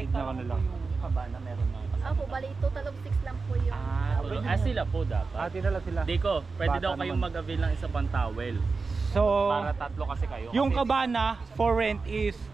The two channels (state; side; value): quieter; left; 4.3 dB